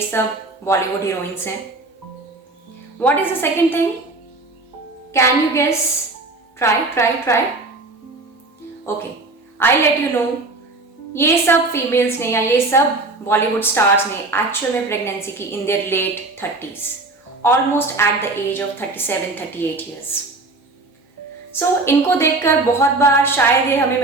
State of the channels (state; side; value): quieter; left; 3.2 dB